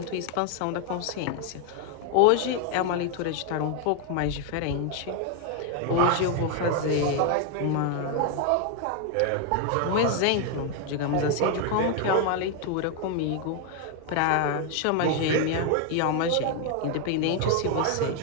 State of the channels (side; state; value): both; different; correlation 0.01